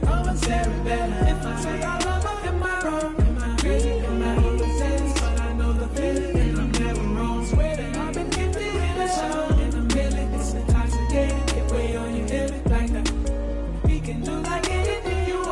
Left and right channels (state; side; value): identical; both; correlation 1.00